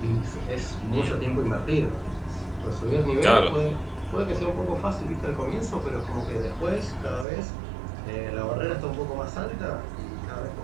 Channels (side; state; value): left; drops out; at 7.2 s